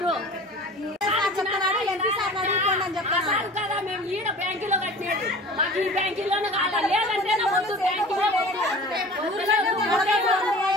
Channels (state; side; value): normal; both; correlation 0.41